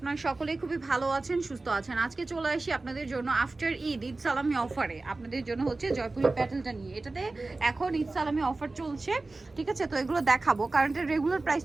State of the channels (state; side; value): quieter; left; 3.3 dB